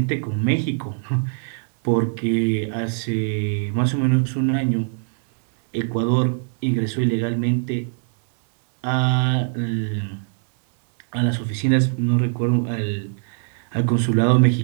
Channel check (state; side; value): silent; left; digital silence